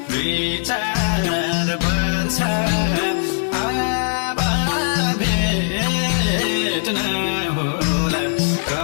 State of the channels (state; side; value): silent; right; 59 dB below the other